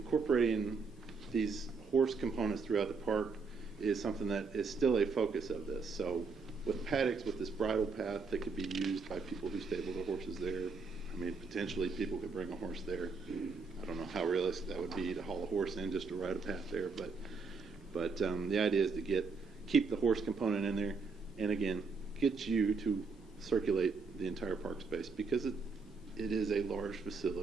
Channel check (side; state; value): left; quieter; 4.7 dB